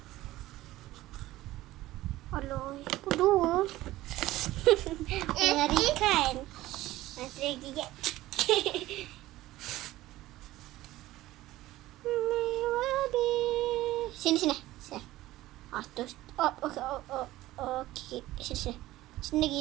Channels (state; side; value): quieter; left; 16.4 dB